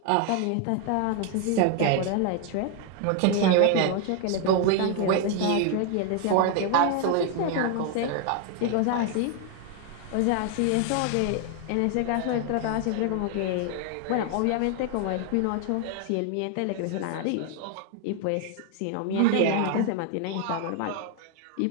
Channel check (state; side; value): different; both; correlation 0.01